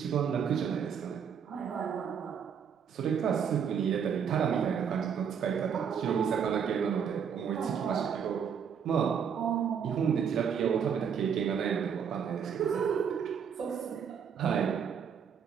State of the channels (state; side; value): quieter; left; 7.4 dB